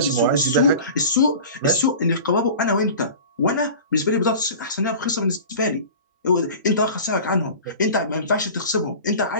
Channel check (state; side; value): inverted; both; correlation -0.38